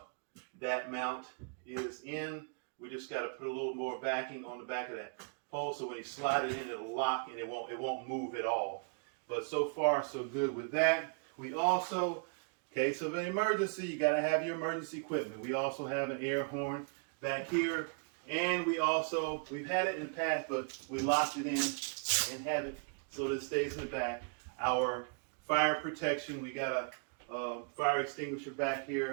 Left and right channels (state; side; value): quieter; left; 38.9 dB